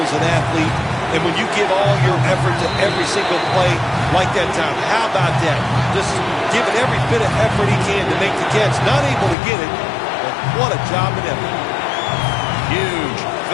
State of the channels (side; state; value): right; drops out; at 9.3 s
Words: as an athlete, and when you give all your effort to every single play like that time, how about that? Just giving every bit of effort he can to make the catch. Not able to get it, but what a job and effort. Huge